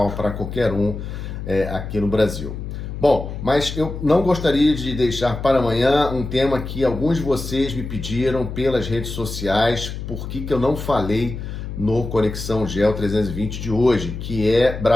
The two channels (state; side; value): noise; left; hum, 7 dB below the sound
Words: para qualquer um aqui no Brasil. Bom, mas eu não gostaria de deixar para amanhã um tema que alguns de vocês me pediram pelas redes sociais, por que eu não falei no Conexão Geo 320 de hoje, que é